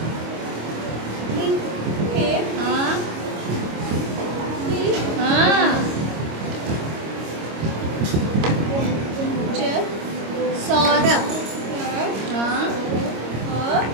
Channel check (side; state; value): left; late; 26 ms